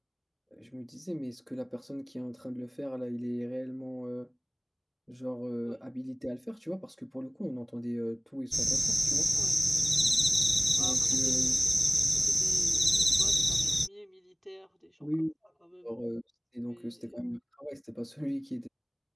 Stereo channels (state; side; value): identical; both; correlation 1.00